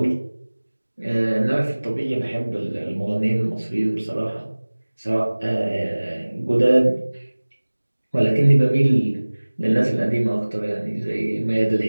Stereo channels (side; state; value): both; inverted; correlation -1.00